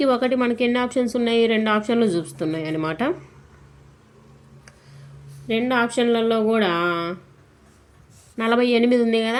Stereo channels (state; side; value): identical; both; correlation 1.00